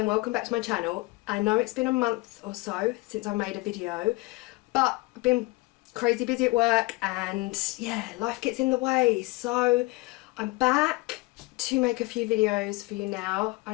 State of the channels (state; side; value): quieter; right; 23.1 dB